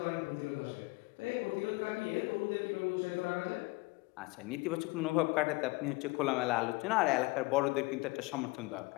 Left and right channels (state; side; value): quieter; right; 24.1 dB